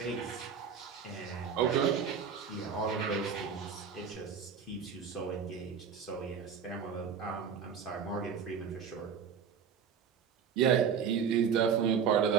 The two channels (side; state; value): left; quieter; 6.9 dB